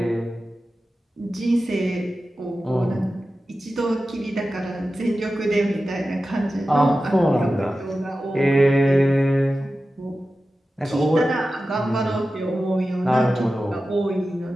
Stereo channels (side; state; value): both; normal; correlation 0.94